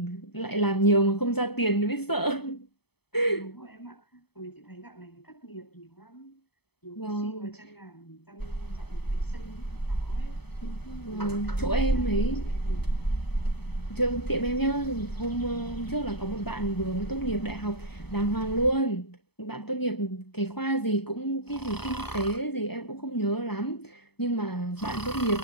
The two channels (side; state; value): right; late; 0.97 ms